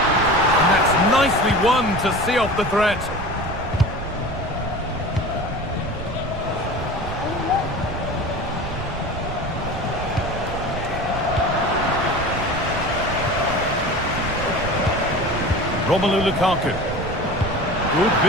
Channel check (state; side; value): noise; right; rumble, 8 dB below the sound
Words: And that's nicely won to see off the threat. Romelu Lukaku. Good